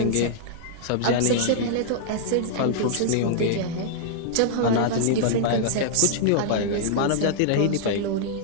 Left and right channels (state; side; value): different; both; correlation -0.01